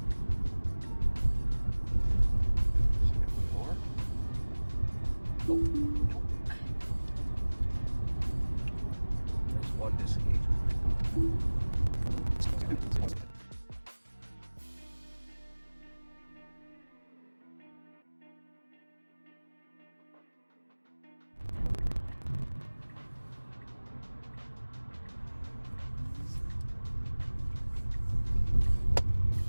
More. Oh, nope. There's one disengagement.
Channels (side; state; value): both; inverted; correlation -1.00